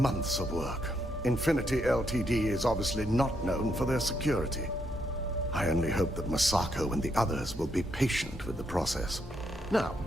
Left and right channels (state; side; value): normal; both; correlation 0.77